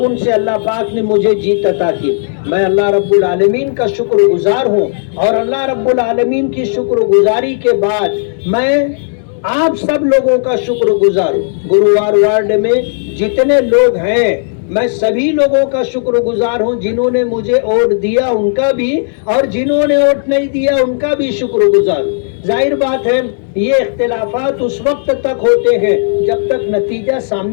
سے اللہ پاک نے مجھے جیت عطا کی. میں اللہ رب العالمین کا شکر گزار ہوں اور اللہ رب العالمین کی شکر گزاری کے بعد میں آپ سب لوگوں کا شکر گزار ہوں. گرووار وارڈ میں جتنے لوگ ہیں میں سبھی لوگوں کا شکر گزار ہوں. جنہوں نے مجھے ووٹ دیا ان کا بھی اور جنہوں نے ووٹ نہیں دیا ان کا بھی شکر گزار ہوں. ظاہر بات ہے یہ اختلافات اس وقت تک ہوتے ہیں جب تک نتیجہ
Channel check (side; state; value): right; silent; digital silence